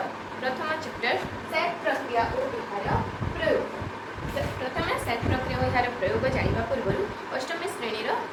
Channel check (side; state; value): both; identical; correlation 1.00